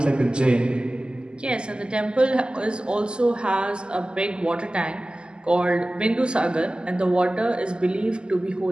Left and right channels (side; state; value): left; late; 0.048 ms